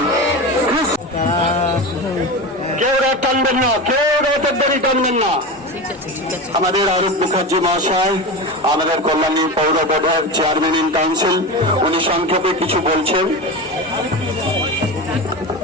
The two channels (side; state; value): both; normal; correlation 0.24